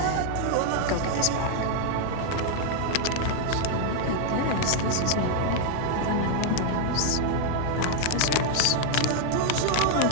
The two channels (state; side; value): different; both; correlation 0.00